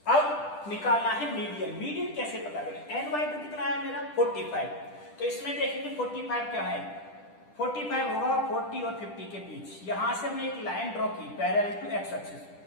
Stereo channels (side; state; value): right; late; 10 ms